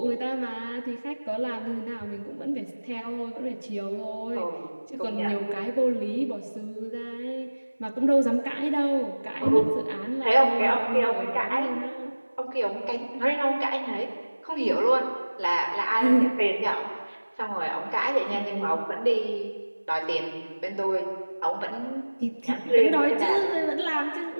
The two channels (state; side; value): inverted; both; correlation -1.00